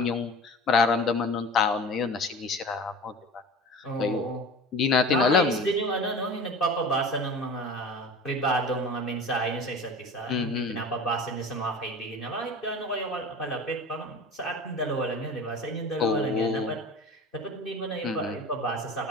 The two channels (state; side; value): normal; both; correlation 0.36